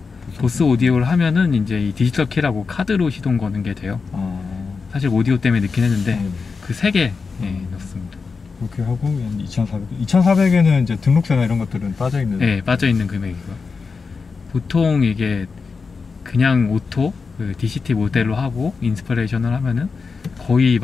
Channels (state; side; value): quieter; right; 4.8 dB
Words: 보스 오디오를 하면은 이제 이 디지털 키라고 카드로 시동 거는 게 돼요. 사실 오디오 때문에 넣긴 했는데 그 3개 넣습니다. 그렇게 하고 2,400. 2,400에는 이제 등록세나 이런 것들은 빠져 있는. 네, 빠져 있는 금액이고. 보통 이게 그냥 오토 그 DCT 모델로 하고 인스피레이션을 하면은 거의